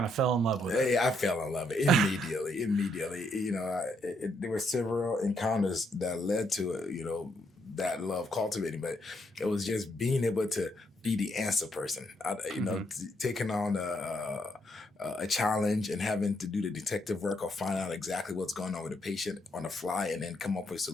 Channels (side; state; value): both; normal; correlation 0.75